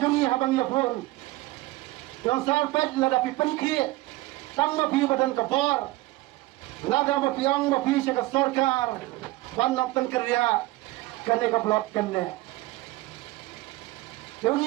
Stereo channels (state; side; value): quieter; left; 19.2 dB